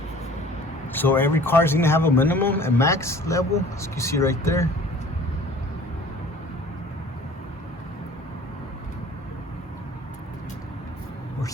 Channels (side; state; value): both; normal; correlation 0.48